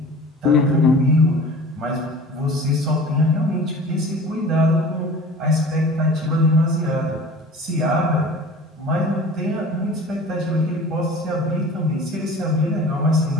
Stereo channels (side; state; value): both; normal; correlation 0.42